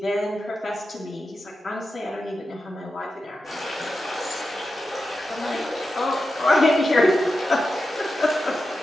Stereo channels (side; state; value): both; normal; correlation 0.90